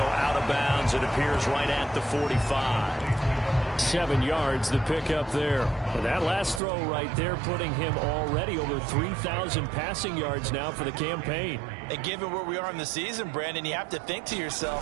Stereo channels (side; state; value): left; drops out; at 6.6 s